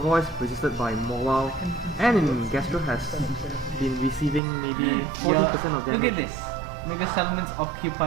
resisted by Mawile, and in Gastro has been receiving maybe 40% of damage. Look at this. Mega Salamence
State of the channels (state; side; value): drops out; left; at 4.4 s